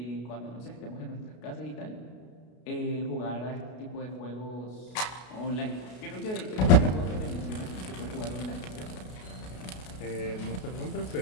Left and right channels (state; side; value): late; right; 33 ms